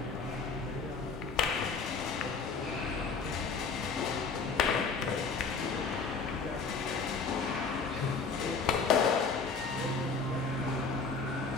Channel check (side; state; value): right; quieter; 4.8 dB